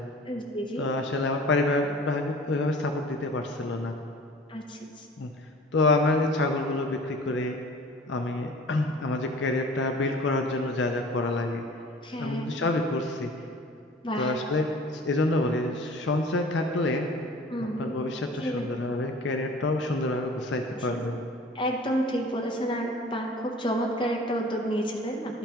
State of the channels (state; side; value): normal; both; correlation 0.45